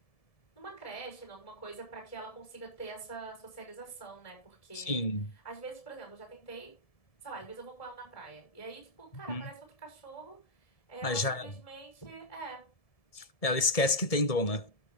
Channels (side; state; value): right; late; 1.7 ms